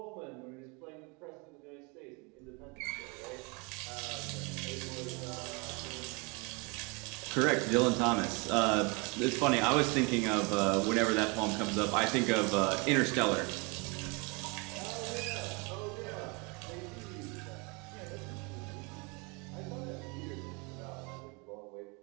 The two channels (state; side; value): quieter; left; 30.0 dB